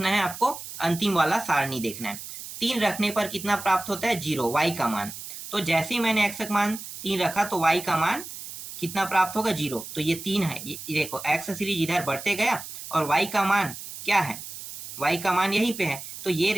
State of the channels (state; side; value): noise; right; hiss, 11 dB below the sound